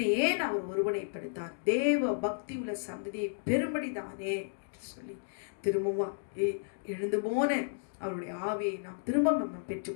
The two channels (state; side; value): silent; right; digital silence